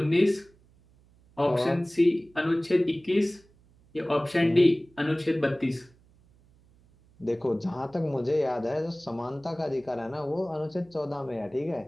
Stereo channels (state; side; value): noise; right; hum, 30 dB below the sound